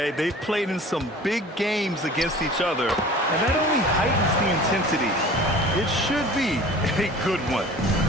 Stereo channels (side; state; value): both; normal; correlation 0.43